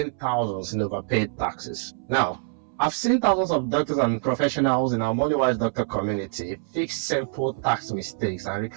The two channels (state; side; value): silent; left; 62 dB below the other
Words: thousands in overpaid taxes. Now, I've seen thousands of doctors and professionals in our MoneyWise Doctor community fix simple tax mistakes and